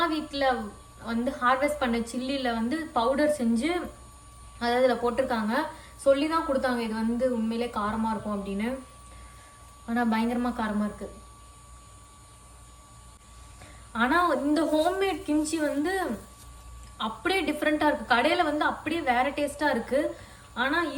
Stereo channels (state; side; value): identical; both; correlation 1.00